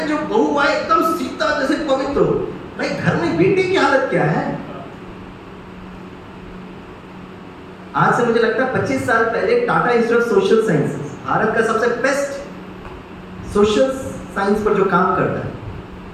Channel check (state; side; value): identical; both; correlation 1.00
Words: जो बहू आए एकदम सीता जैसे पवित्र हो, भाई घर में बेटे की हालत क्या है? आज से मुझे लगता है 25 साल पहले Tata institute of social sciences, Bharat का सबसे बेस्ट सोशल साइंस पर जो काम करता है,